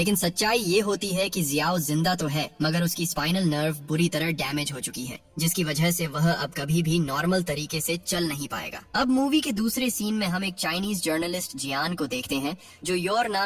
सच्चाई ये होती है कि जियाओ जिंदा तो है, मगर उसकी स्पाइनल नर्व बुरी तरह डैमेज हो चुकी है, जिसकी वजह से वह अब कभी भी नॉर्मल तरीके से चल नहीं पाएगा। अब मूवी के दूसरे सीन में हम एक चाइनीज जर्नलिस्ट जियान को देखते हैं जो योर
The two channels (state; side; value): identical; both; correlation 1.00